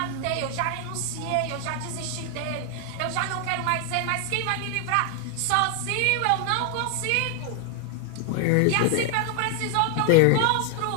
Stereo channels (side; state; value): both; different; correlation 0.00